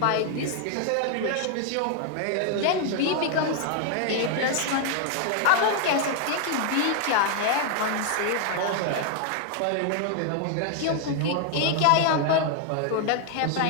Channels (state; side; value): different; both; correlation 0.00